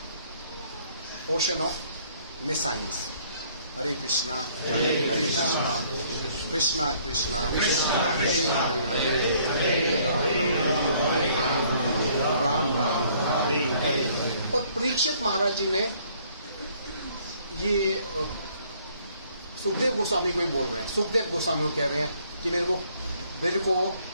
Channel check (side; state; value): both; inverted; correlation -0.62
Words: ocean of nescience. Hare Krishna Hare Krishna, Krishna Krishna Ram Ram Hare Hare. और परीक्षित महाराज जी ने ये सुखदेव गोस्वामी को ही बोल रहे हैं। सुखदेव गोस्वामी को कह रहे हैं कि मेरे को